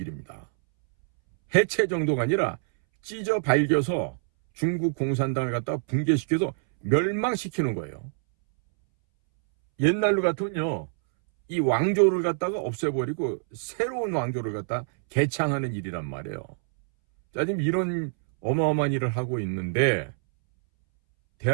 해체 정도가 아니라 찢어 발겨서 중국 공산당을 갖다 붕괴시켜서 멸망시키는 거예요. 옛날로 같으면요, 이 왕조를 갖다가 없애버리고 새로운 왕조를 갖다 개창하는 일이란 말이에요. 자, 지금 이런 어마어마한 일을 하고 있는데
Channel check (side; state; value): left; silent; 61 dB below the other